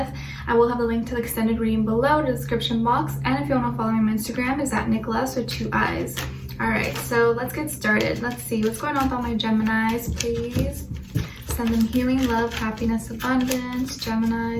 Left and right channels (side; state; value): both; identical; correlation 1.00